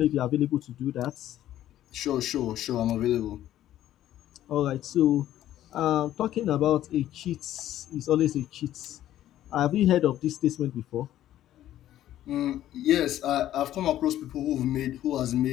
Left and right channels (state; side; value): quieter; right; 12.8 dB